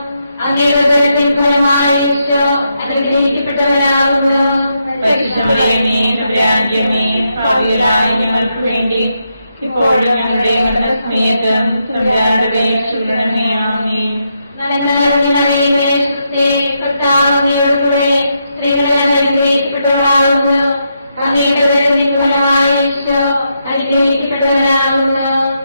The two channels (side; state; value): both; inverted; correlation -0.81